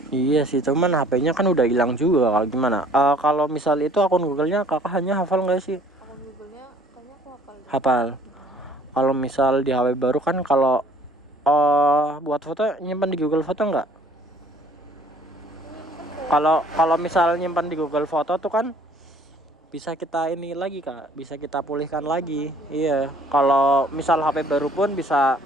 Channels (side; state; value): both; normal; correlation 0.56